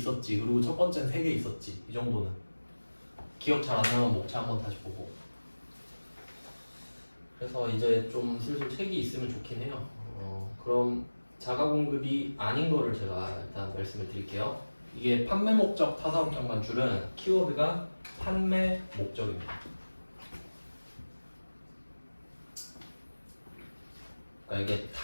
그리고 첫 번째는 3개 있었지. 이 정도는. 기억 잘 안 나면 목차 한번 다시 보고. 그래서 이제 좀 슬슬 책이 있으면 좋긴 해요. 그럼 자가 공급이 아닌 거를 제가 일단 말씀을 드릴게요. 이게 판매 목적 타사업장 반출은 키워드가 판매 목적입니다. 그러니까 이게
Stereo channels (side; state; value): both; inverted; correlation -1.00